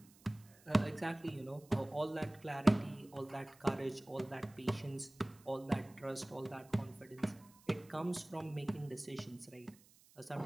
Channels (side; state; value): right; noise; hiss, 26 dB below the sound